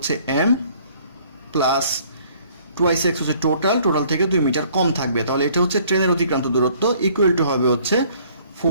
m প্লাস 2x হচ্ছে টোটাল থেকে 2 মিটার কম থাকবে। তাহলে এটা হচ্ছে ট্রেনের অতিক্রান্ত দূরত্ব, ইকুয়াল টু হবে হচ্ছে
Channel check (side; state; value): both; inverted; correlation -0.59